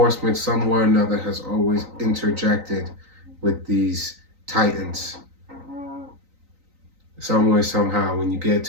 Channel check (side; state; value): left; late; 3.9 ms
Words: somewhere or another, has always interjected with these titans. Some way, somehow, when you get